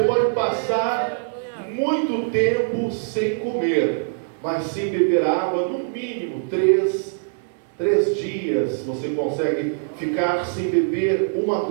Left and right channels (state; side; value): silent; left; 64 dB below the other